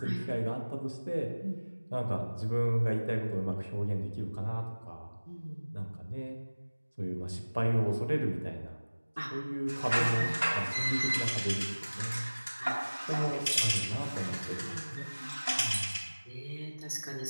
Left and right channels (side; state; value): both; inverted; correlation -1.00